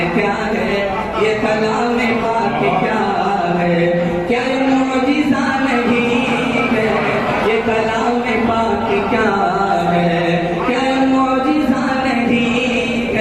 کیا ہے یہ کلام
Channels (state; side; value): identical; both; correlation 1.00